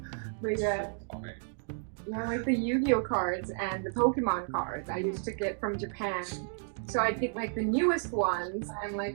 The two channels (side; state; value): left; silent; 56 dB below the other